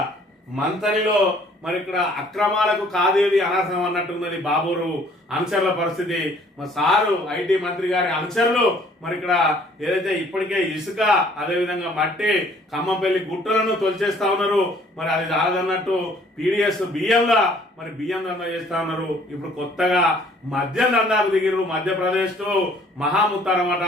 మంతనిలో మరి ఇక్కడ అక్రమాలకు కాదేది అనర్హం అన్నట్టున్నది బాబూరు అనుచరుల పరిస్థితి. మా సారు ఐటీ మంత్రి గారి అనుచరులు మరి ఇక్కడ ఏదైతే ఇప్పటికే ఇసుక అదేవిధంగా మట్టి ఖమ్మంపల్లి గుట్టలను తొలిచేస్తా ఉన్నారు. మరి అది రాదన్నట్టు పీడిఎస్ బియ్యంలా మరి బియ్యం దందా చేస్తా ఉన్నారు. ఇప్పుడు కొత్తగా మద్యం దందాకు దిగిరు. మధ్యప్రదేశ్ తో మహాముత్తారమాట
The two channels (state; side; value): normal; both; correlation 0.58